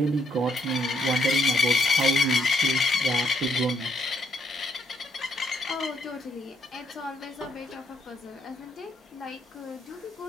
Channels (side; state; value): both; normal; correlation 0.73